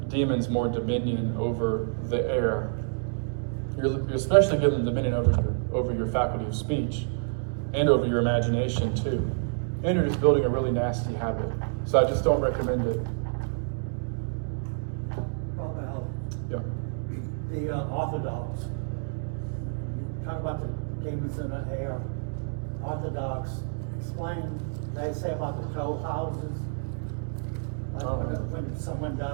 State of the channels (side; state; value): left; silent; digital silence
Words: demons more dominion over the air. You're especially giving them dominion over your faculty of speech and over your imagination too. And you're just building a really nasty habit. So I just don't recommend it. Well, Yeah. the Orthodox, talk about the demons in the air. Orthodox, explain, they say about the toll houses. Like when someone